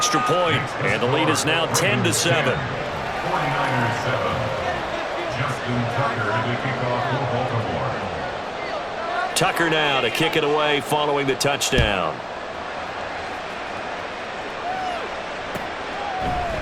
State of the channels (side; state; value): both; identical; correlation 1.00